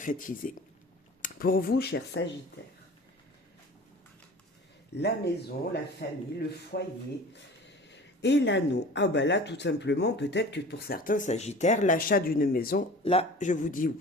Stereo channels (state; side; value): normal; both; correlation 0.41